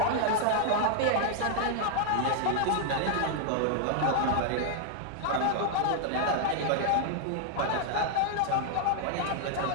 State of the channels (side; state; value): both; different; correlation 0.00